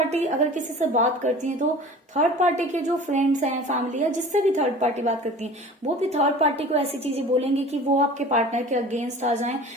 अगर किसी से बात करती है तो थर्ड पार्टी के जो फ्रेंड्स हैं, फैमिली या जिससे भी थर्ड पार्टी बात करती है, वो भी थर्ड पार्टी को ऐसी चीजें बोलेंगे कि वो आपके पार्टनर के अगेंस्ट आ जाएं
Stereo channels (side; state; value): both; normal; correlation 0.41